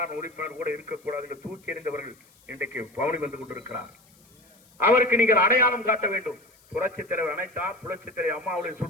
உறுப்பினர் கூட இருக்கக்கூடாது என்று தூக்கி எறிந்தவர்கள் இன்றைக்கு பவனி வந்து கொண்டிருக்கிறார். அவருக்கு நீங்கள் அடையாளம் காட்ட வேண்டும். புரட்சித் தலைவர் அனைத்தார், புரட்சித் தலைவர் அம்மாவுடைய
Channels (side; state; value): left; noise; hiss, 30 dB below the sound